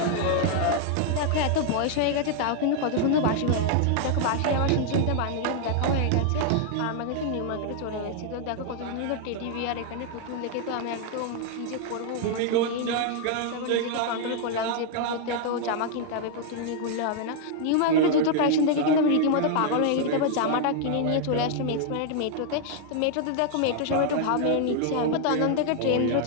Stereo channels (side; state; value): both; different; correlation 0.00